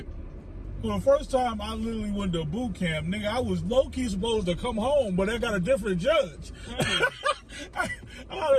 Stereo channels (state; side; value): identical; both; correlation 1.00